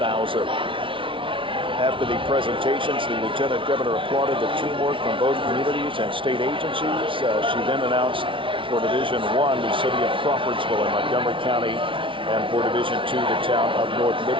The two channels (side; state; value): left; late; 0.25 ms